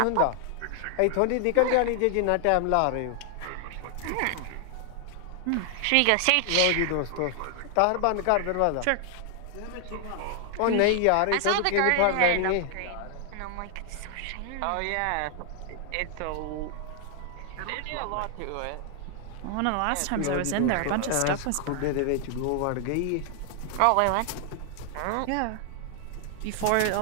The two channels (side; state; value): both; different; correlation 0.00